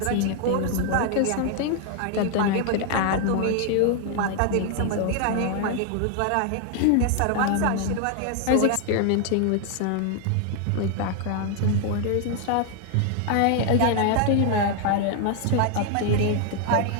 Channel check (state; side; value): different; both; correlation 0.00